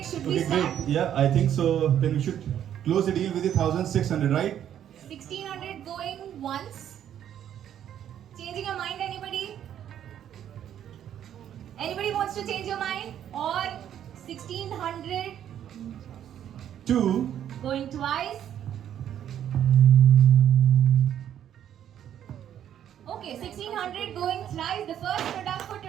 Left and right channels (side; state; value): left; quieter; 10.2 dB